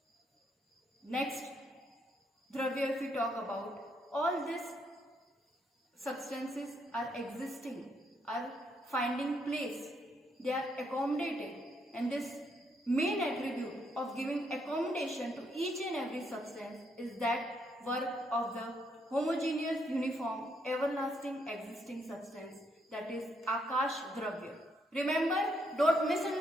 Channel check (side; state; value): both; normal; correlation 0.75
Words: Next Dravya, if we talk about, all these substances are existing, are finding place, they are accommodating, and this main attribute of giving accommodation to each and every substance is that work of the homogeneous, uniform, everlasting existing substance, that is Akash Dravya. Remember, don't